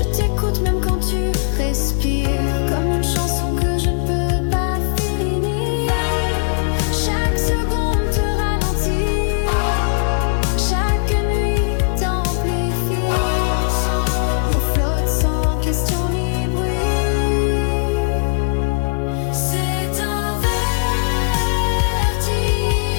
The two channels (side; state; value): right; silent; digital silence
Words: t'écoute même quand tu respires, comme une chanson que je ne peux pas finir. Chaque seconde te ralentit, chaque nuit t'amplifie. On flotte sans question ni bruit. C'est un